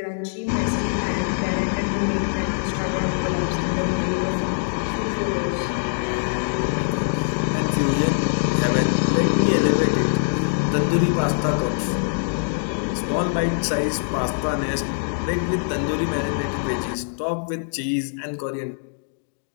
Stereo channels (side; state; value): right; silent; digital silence